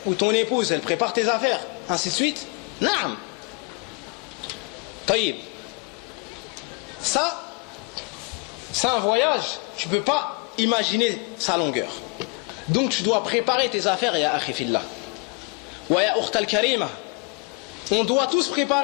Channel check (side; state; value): right; quieter; 31.0 dB